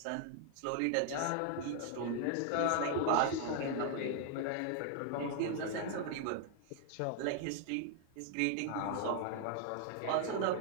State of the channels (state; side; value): different; both; correlation 0.00